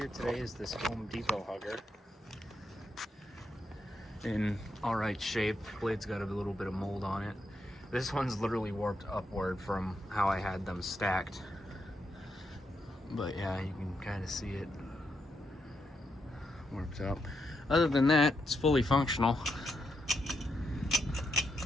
today is this Home Depot hugger. In alright shape, blade's got a little bit of mold on it. This one's literally warped upward from how I had them stacked. But yeah, you can kind of see it warped up. Other than that, it's fully functional.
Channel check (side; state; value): both; normal; correlation 0.81